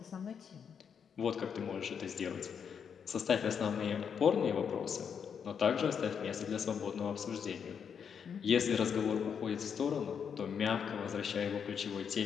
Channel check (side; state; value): right; quieter; 7.2 dB